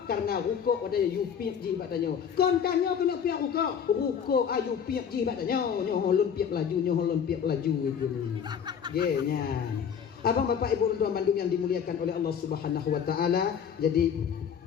karena ruko ada yupiak jibat danyo. Kontanyo kena piak ruko ayu piak jibat danyo. Nyo holon piak laju itu. Genya. Abang bapak ibu dan bandung yang dimuliakan oleh Allah Subhanahu wa taala. Jadi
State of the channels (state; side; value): quieter; right; 7.6 dB